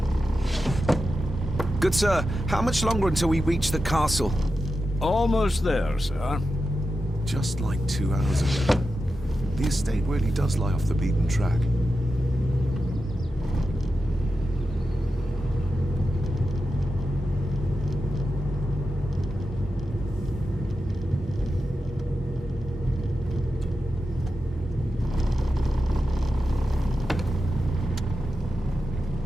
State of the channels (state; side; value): normal; both; correlation 0.90